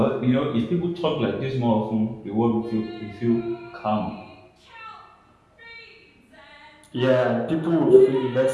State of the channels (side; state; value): both; identical; correlation 1.00